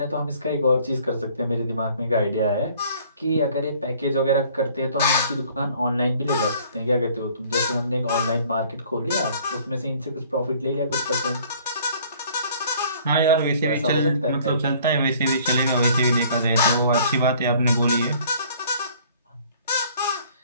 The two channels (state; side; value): inverted; both; correlation -0.56